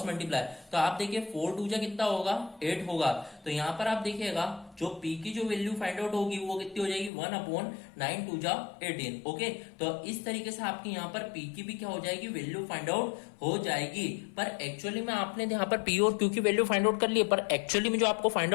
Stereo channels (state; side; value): drops out; right; at 7.1 s